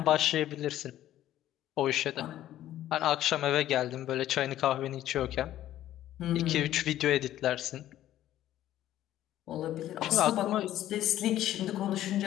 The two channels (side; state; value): right; quieter; 13.0 dB